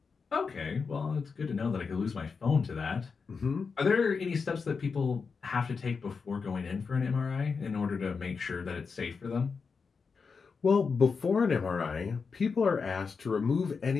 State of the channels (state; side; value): quieter; right; 5.2 dB